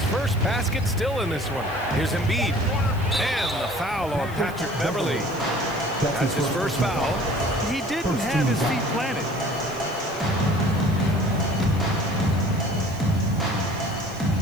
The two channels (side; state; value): left; noise; hiss, 21 dB below the sound